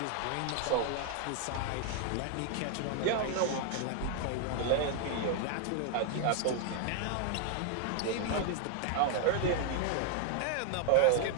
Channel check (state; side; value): different; both; correlation 0.00